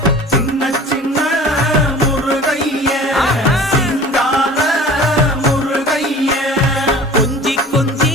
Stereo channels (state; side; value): normal; both; correlation 0.43